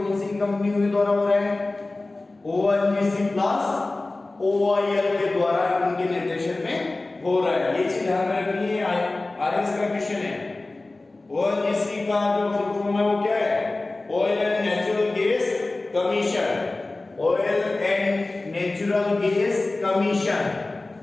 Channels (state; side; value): quieter; right; 3.1 dB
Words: सी कंपनियों के द्वारा हो रहा है? ONGC प्लस OIL के द्वारा उनके निर्देशन में हो रहा है। ये चीज ध्यान रखनी है, आरएस का क्वेश्चन है। ONGC का जो फुल फॉर्म है वो क्या है? Oil and natural gas commission, oil and natural gas commission,